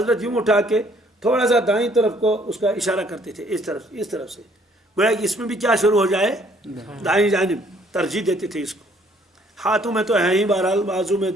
یوں اٹھا کے تھوڑا سا دائیں طرف کو اس کا اشارہ کرتے تھے، اس طرف سے، گویا کہ اس میں بھی کیا شروع ہو جائے؟ دائیں جانب ترجیح دیتے تھے اس کو۔ ہاتھوں میں تو ہے ہی، بہرحال بازو میں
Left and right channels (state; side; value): normal; both; correlation 0.62